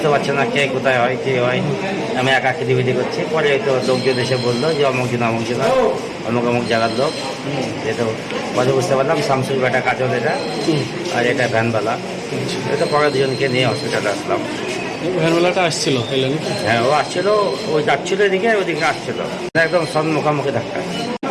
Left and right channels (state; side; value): identical; both; correlation 1.00